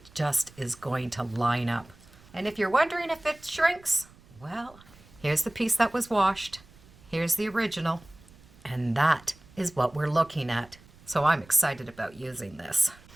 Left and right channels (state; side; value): noise; right; rumble, 25 dB below the sound